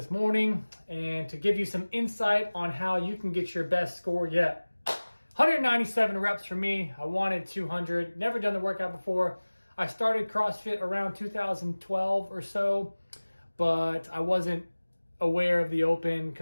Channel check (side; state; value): both; inverted; correlation -1.00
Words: morning, and to give you some insight on how you can get your best score yet. 197 reps for me. I wanted 200. Never done the workout before. I started CrossFit around 2012 or so, but I wasn't aware of the open